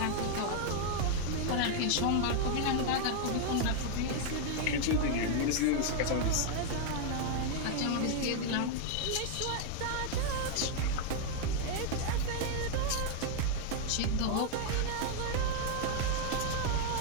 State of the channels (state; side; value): different; both; correlation 0.00